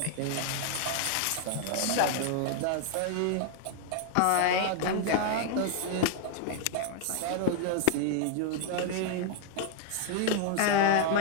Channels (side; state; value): both; different; correlation 0.00